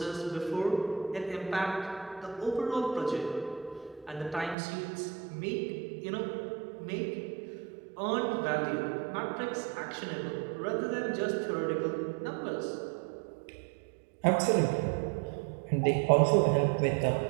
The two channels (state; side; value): drops out; left; at 4.5 s